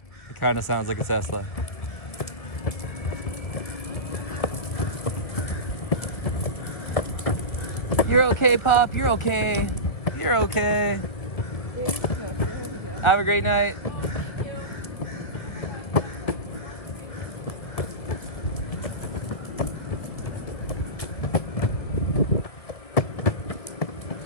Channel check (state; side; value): late; right; 2.0 ms